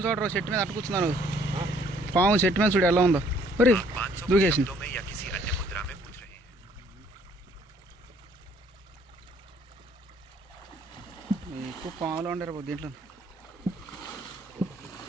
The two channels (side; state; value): both; normal; correlation 0.62